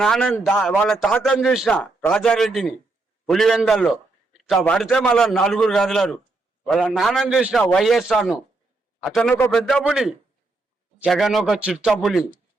వాళ్ళ తాతను చూసిన రాజారెడ్డిని పులివెందల్లో ఇట్లా పడితే మళ్ళీ 4 కదలరు. వాళ్ళ నాన్నని చూసిన వైఎస్ఆర్ను, అతను ఒక పెద్ద పులి, జగన్ ఒక చిత్త పులి.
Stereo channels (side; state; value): left; quieter; 3.3 dB